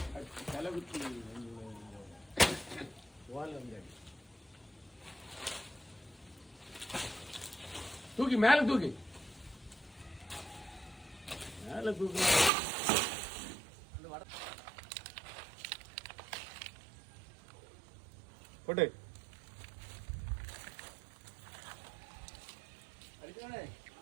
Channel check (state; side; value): drops out; left; at 12.5 s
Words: தூக்கி மேல தூக்கி மேல தூக்கி போட்டு